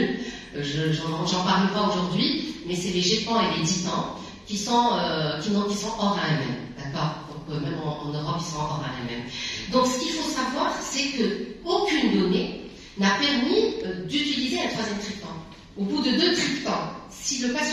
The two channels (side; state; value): both; identical; correlation 1.00